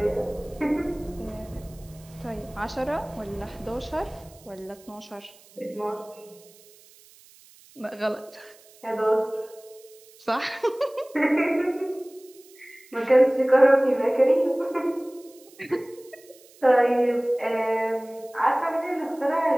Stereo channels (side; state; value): right; noise; hiss, 25 dB below the sound